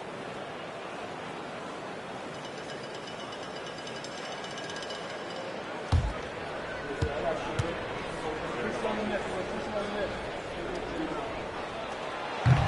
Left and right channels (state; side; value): identical; both; correlation 1.00